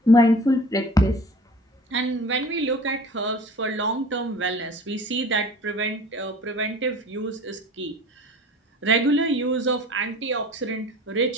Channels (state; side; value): normal; both; correlation 0.43